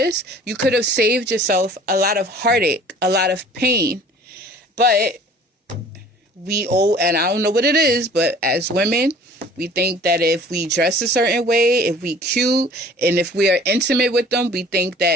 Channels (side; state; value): both; normal; correlation 0.49